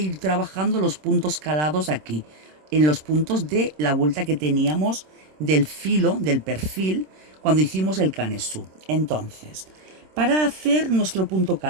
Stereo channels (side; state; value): left; late; 26 ms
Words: trabajando los puntos calados aquí, en los puntos de la vuelta que teníamos del filo, del perfil, cuando hicimos el canesú. Entonces, para hacer nuestro punto